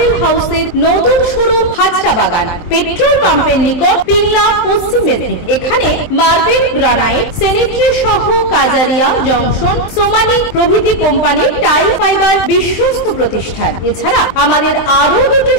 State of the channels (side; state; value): right; late; 23 ms